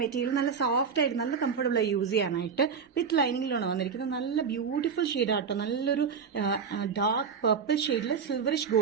മെറ്റീരിയൽ. നല്ല സോഫ്റ്റ് ആയിട്ട് നല്ല കംഫർട്ടബിൾ ആയി യൂസ് ചെയ്യാനായിട്ട്. വിത്ത് ലൈനിങ്ങിലാണ് വന്നിരിക്കുന്നത്. നല്ല ബ്യൂട്ടിഫുൾ ഷെയ്ഡ് ആട്ടോ. നല്ലൊരു ഡാർക്ക് പർപ്പിൾ ഷെയ്ഡിൽ സിൽവറിഷ്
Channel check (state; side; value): quieter; left; 6.3 dB